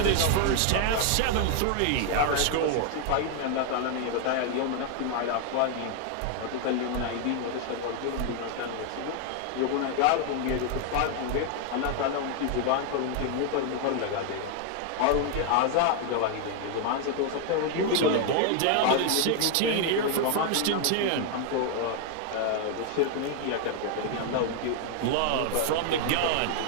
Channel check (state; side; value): different; both; correlation 0.00